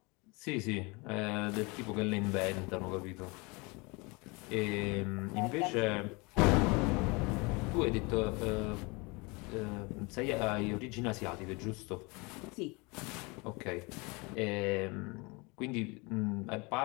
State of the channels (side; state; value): right; quieter; 27.4 dB